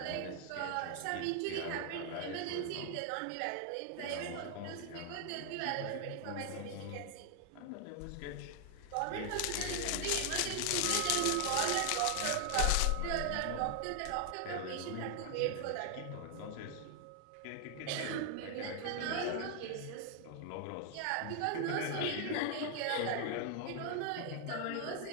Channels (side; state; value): both; different; correlation 0.00